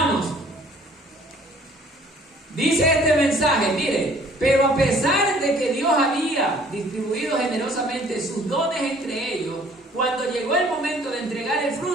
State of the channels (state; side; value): normal; both; correlation 0.56